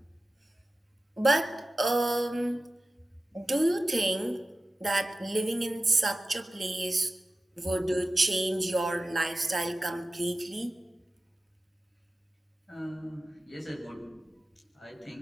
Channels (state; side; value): normal; both; correlation 0.95